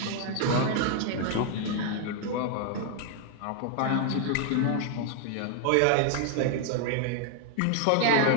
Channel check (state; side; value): different; both; correlation 0.00